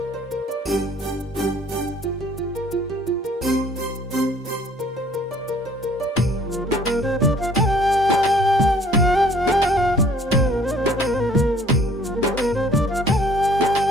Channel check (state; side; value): normal; both; correlation 0.57